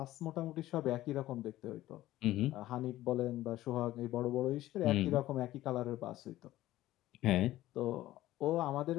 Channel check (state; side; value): quieter; right; 15.3 dB